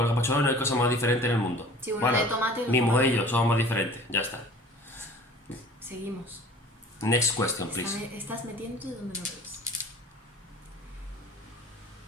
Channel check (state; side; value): normal; both; correlation 0.46